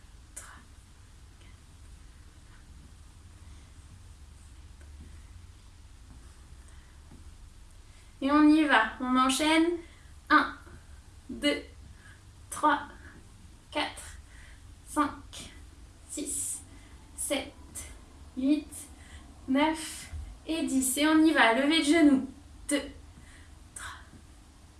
Et on y va, on enchaîne. 1, 2, 3, 4, 5, 6, 7, 8, 9 et 10. Et on y va, levée de genoux. 2, 3,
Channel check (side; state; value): both; identical; correlation 1.00